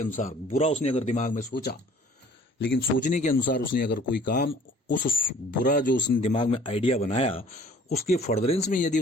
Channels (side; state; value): both; normal; correlation 0.52